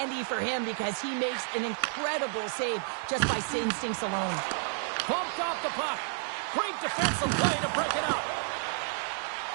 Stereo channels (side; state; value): left; silent; 57 dB below the other